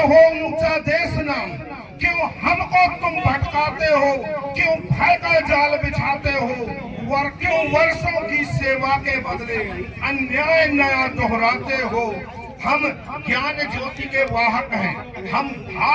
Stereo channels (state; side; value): identical; both; correlation 1.00